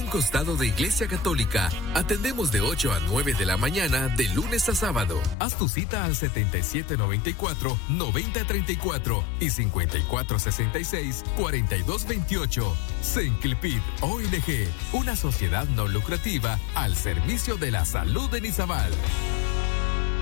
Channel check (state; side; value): drops out; right; at 5.4 s